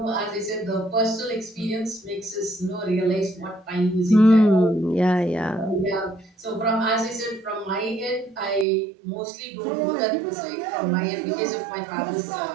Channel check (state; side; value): drops out; left; at 8.7 s